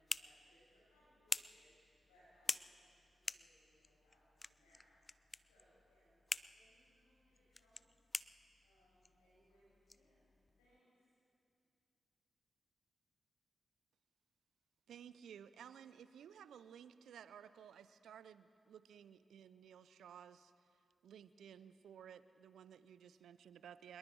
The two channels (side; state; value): both; normal; correlation 0.94